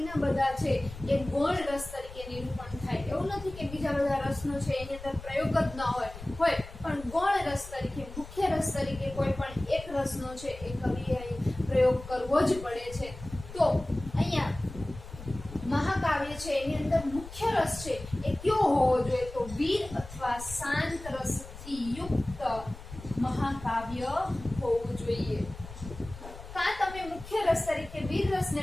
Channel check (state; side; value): noise; left; rumble, 14 dB below the sound